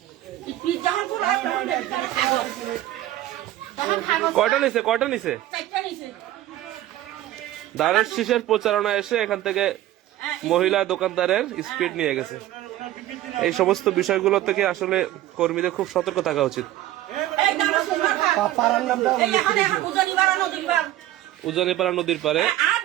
স্পিড যখন খোলা তখন দেখি তারা কাগজ। তখন কাগজ কয়টা নিছে? 4টা নিছে। দাঁড়ের শীষের প্রচারণা এসে এখান থেকে মহিলা দোকানদারের স্পিড নিয়ে গেছে। এই সমস্ত বিষয়গুলো থেকে আসলে কর্মীদের খুব সতর্ক থাকা উচিত। উজানিপাড়া নদীর পারে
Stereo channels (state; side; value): quieter; left; 14.2 dB